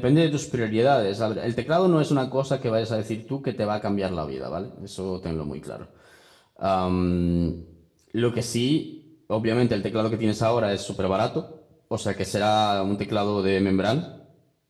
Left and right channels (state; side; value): identical; both; correlation 1.00